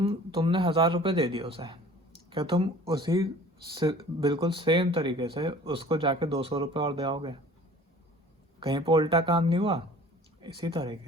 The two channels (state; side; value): normal; both; correlation 0.47